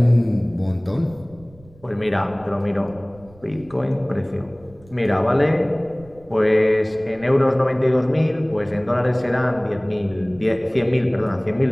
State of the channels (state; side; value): noise; right; rumble, 24 dB below the sound